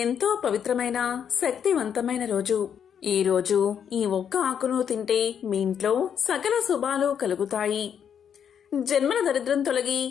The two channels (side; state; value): right; quieter; 8.2 dB